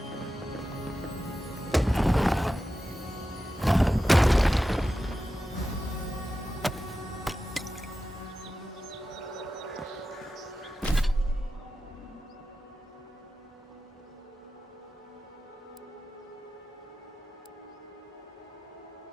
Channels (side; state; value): both; normal; correlation 0.92